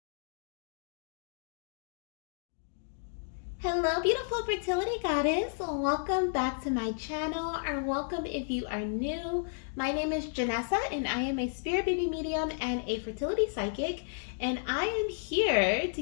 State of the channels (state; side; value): silent; right; digital silence